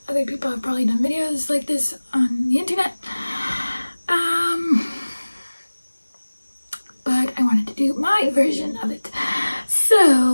other people have probably done videos like this on the internet, but I wanted to do my version of it.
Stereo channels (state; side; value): inverted; both; correlation -1.00